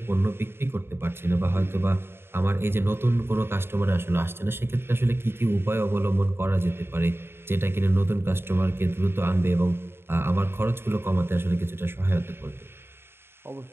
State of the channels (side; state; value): left; late; 0.11 ms